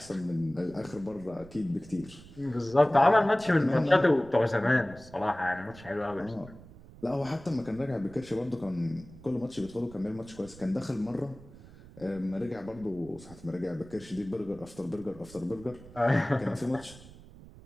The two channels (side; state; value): right; noise; rumble, 19 dB below the sound